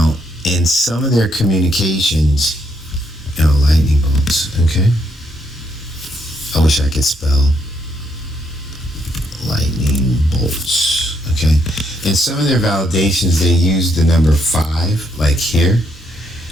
in some of their communications, lightning bolts, okay? I wish I could spell lightning bolts, okay? In some of their validations, they use the number 5, like here,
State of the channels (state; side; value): normal; both; correlation 0.75